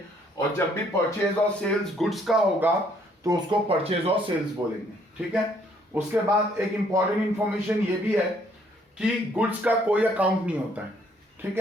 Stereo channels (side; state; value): both; normal; correlation 0.65